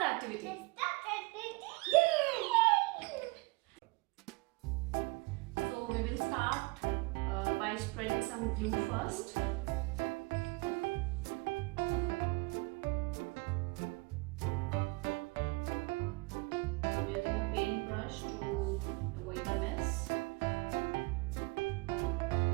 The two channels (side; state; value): left; quieter; 26.1 dB